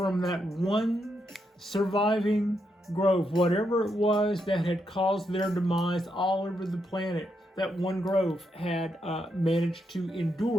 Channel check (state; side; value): normal; both; correlation 0.81